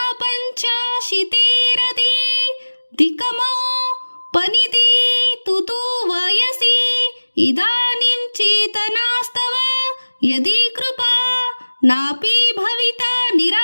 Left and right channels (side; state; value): both; inverted; correlation -1.00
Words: ಪಂಚಾಶಿತೇರದಿ ದಿಕಮೋ ಪನಿದಿ ತುತು ವಯಸಿ ಇದಾನಿಂ ಚೇತನಾಸ್ತವ ಯದಿ ಕೃಪಾ ನಾಪಿ ಭವಿತಾ